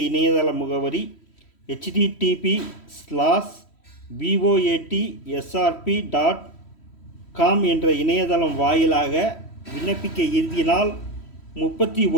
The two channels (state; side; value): late; right; 3.1 ms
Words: இணையதள முகவரி http://voatsrp.com என்ற இணையதளம் வாயிலாக விண்ணப்பிக்க இறுதி நாள்